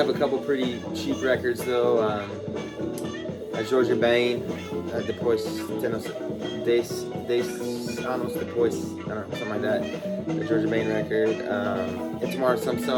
a couple pretty cheap records though. Jorge Ben, Depois Anos Depois, I don't know, something like that. The Jorge Ben record, Itamar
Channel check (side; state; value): both; identical; correlation 1.00